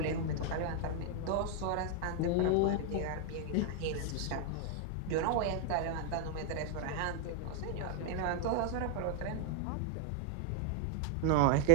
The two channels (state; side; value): different; both; correlation 0.00